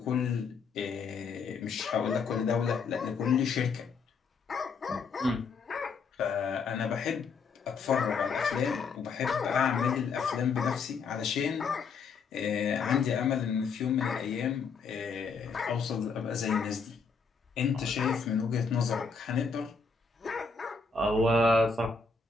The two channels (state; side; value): quieter; right; 5.1 dB